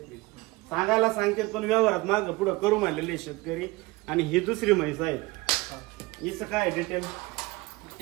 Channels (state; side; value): quieter; left; 22.1 dB